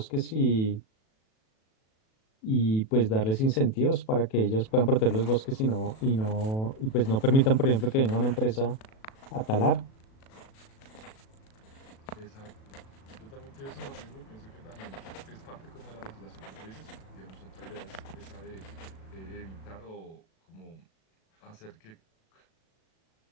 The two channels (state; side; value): late; right; 37 ms